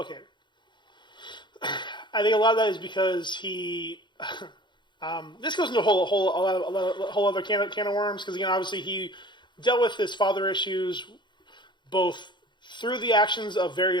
I think a lot of that is because he. This goes into a whole other can of worms because again, obviously, he dealt with his father issues both through the actions of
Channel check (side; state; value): right; late; 0.22 ms